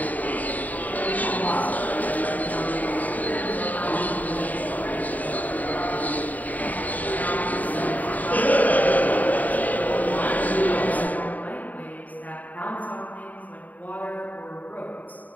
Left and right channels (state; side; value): late; right; 0.077 ms